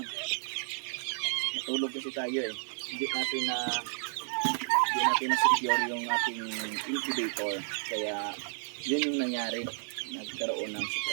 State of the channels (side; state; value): left; silent; digital silence